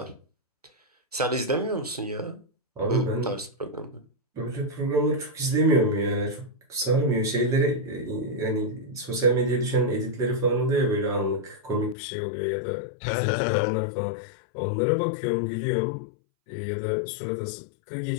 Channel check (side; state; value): right; drops out; at 12.0 s